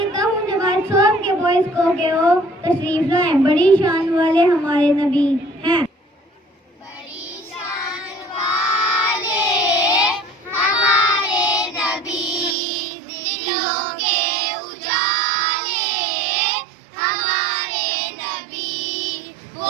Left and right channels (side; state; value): left; drops out; at 12.6 s